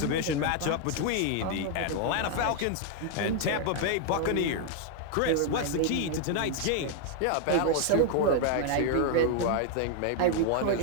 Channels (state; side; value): different; both; correlation 0.00